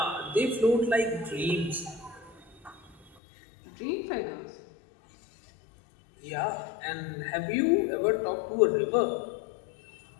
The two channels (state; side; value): drops out; right; at 3.1 s